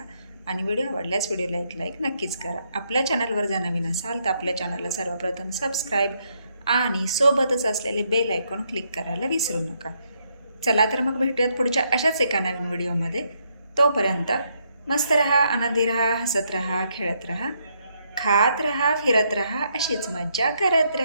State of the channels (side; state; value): both; inverted; correlation -0.75